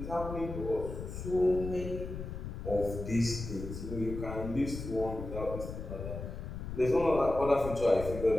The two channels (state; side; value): noise; left; rumble, 7 dB below the sound